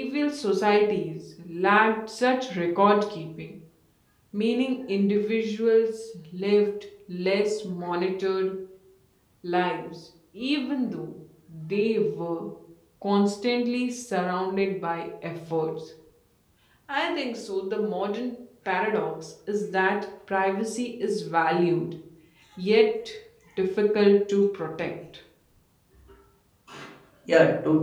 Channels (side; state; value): both; identical; correlation 1.00